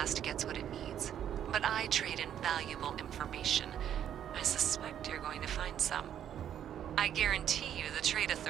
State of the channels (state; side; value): quieter; left; 9.9 dB